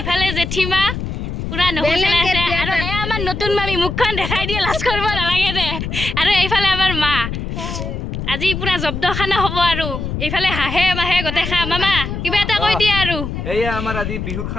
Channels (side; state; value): left; noise; rumble, 5 dB below the sound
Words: জেঠিমা পুৰা নহচলাই আছে আৰু এয়া আমাৰ নতুন মামী মুখখন দেখাই দিয়ে লাজ কৰিব নালাগে দে আৰু এইফালে আমাৰ মা আজি পুৰা জব্দ খানা হ'ব আৰু এইফালে হাঁহে মাহে গোটেই খা মামা কিবা এটা কৈ দিয়া আৰু এয়া আমাৰ আজি বিহুৰ